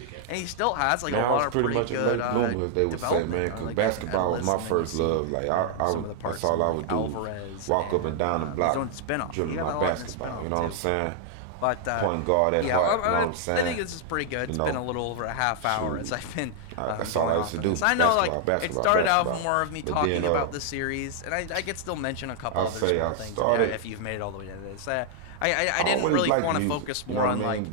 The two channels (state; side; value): different; both; correlation 0.00